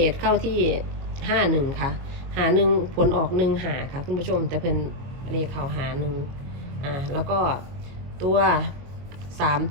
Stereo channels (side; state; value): left; late; 22 ms